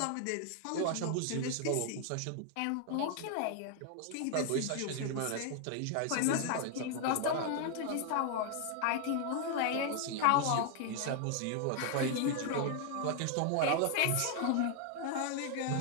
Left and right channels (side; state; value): both; different; correlation 0.00